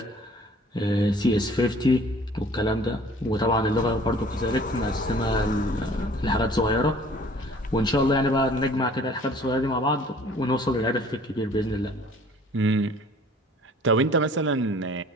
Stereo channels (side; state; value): both; normal; correlation 0.51